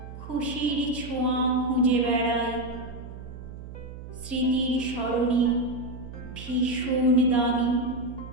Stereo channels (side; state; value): right; noise; hum, 12 dB below the sound